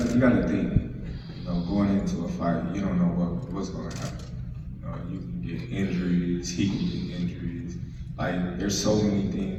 you gotta think. You know, going into a fight, you don't know what's gonna happen. You can get injuries. He can get injuries. Like, there's so many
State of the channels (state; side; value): identical; both; correlation 1.00